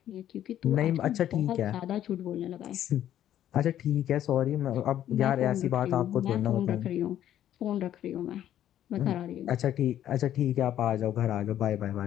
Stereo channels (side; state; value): right; quieter; 11.4 dB